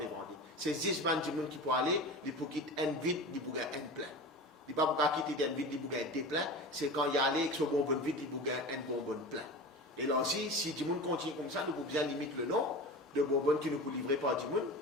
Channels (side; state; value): both; normal; correlation 0.31